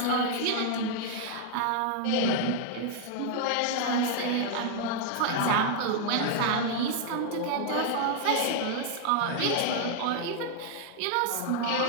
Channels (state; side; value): different; both; correlation 0.00